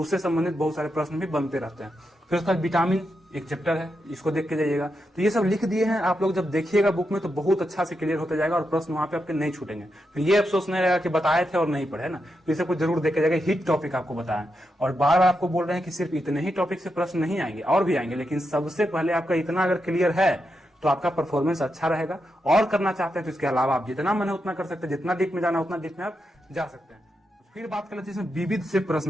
उससे संबंधित बहुत सारे प्रश्न भी बनते रहते हैं। फिर उसका विटामिन एक चैप्टर है, इसको देख के जाइएगा। तो ये सब लिख दिए हैं, आप लोग जब देखिएगा बुक में तो बहुत अच्छा से क्लियर होता जाएगा और प्रश्न वहां पे आपके नहीं छूटेंगे। फिर ये अफसोस नहीं रहेगा कि बताए थे और नहीं पढ़े ना, तो इसे कुछ जरूर देख के जाएगा। हिट टॉपिक आपको बताएं, और बार बार आपको बोल रहे हैं कि सिर्फ इतने ही टॉपिक से प्रश्न नहीं आएंगे, और भी आएंगे, लेकिन सबसे पहले आपका इतना अगर क्लियर है तो आपका परफॉर्मेंस अच्छा रहेगा। और करना चाहते हैं तो इसके अलावा आप जितना मन है उतना कर सकते हैं, जितना डीप में जाना उतना डीप में आप जा सकते हैं। फिर बात कर लेते हैं इसमें विविध से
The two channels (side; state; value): both; normal; correlation 0.85